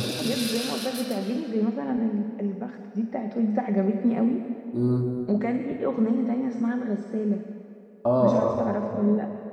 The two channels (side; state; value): both; identical; correlation 1.00